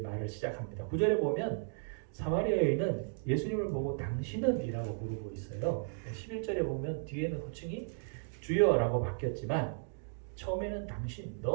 시작합니다. 9절에 보면 사마리아 여인은 예수님을 보고 당신은 이라고 부르고 있어요. 11절에 보면 뒤에는 호칭이 주여라고 바뀌었지만 처음에는 당신,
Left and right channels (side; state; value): left; silent; digital silence